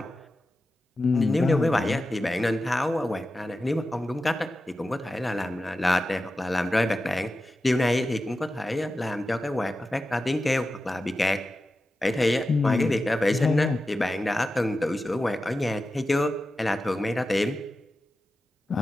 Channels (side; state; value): both; normal; correlation 0.92